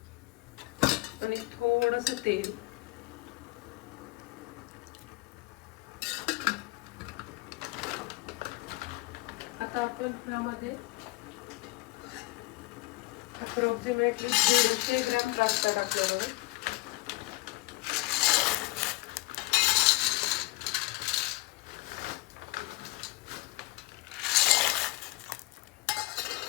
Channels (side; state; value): right; quieter; 22.5 dB